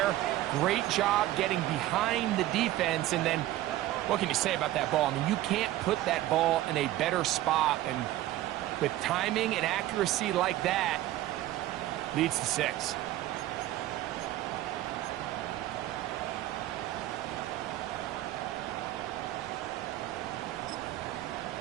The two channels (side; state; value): left; quieter; 14.9 dB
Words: Great job getting behind the defense. And then, what can you say about that ball? I mean, you can't put that ball in a better spot. And with timing and accuracy like that, leads to 6.